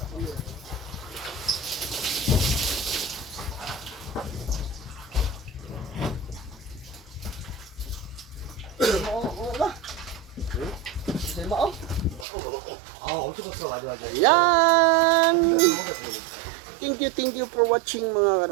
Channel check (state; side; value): drops out; left; at 12.2 s